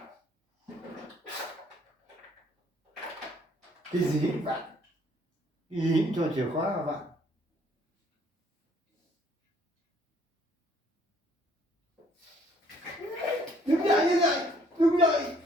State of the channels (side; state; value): both; normal; correlation 0.62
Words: Cái gì các bạn? Cái gì cũng cho chìa khóa các bạn. Đứng dậy, đứng dậy, đứng dậy.